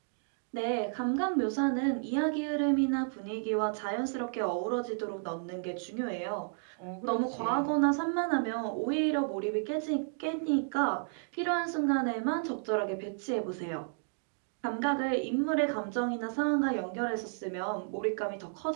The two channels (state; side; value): silent; left; digital silence